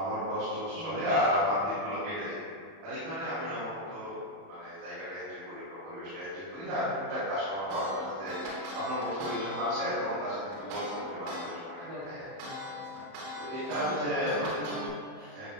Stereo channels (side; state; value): left; late; 30 ms